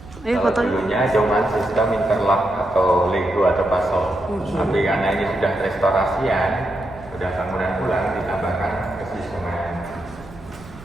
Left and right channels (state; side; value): noise; right; rumble, 19 dB below the sound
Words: Ayo Kalau fotonya. dulunya cuma sistem interlock atau lego atau pasol. Tapi karena ini sudah restorasian, sudah bangunan ulang, ditambahkan ke semen.